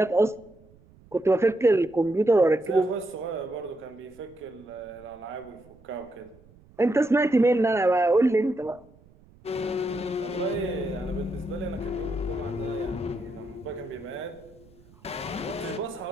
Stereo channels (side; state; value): right; noise; rumble, 27 dB below the sound